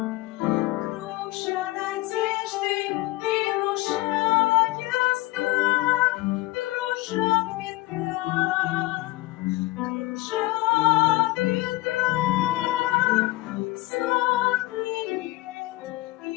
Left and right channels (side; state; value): right; quieter; 20.0 dB